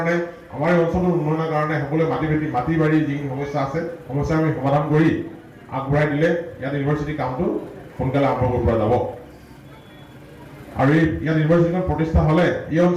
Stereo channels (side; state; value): both; identical; correlation 1.00